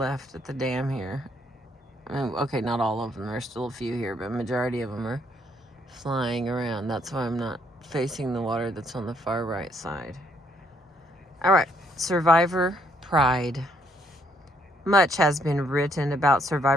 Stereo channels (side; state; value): both; normal; correlation 0.69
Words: at the dam here. Okay, not all of them. There's still a few here, but majority of them are flying around. That's why I'm not facing the water that's on the far right side. All right, Survivor Pride. Much has been written about